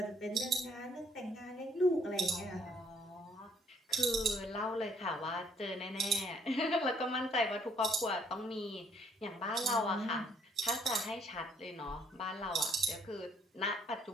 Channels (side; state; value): both; normal; correlation 0.64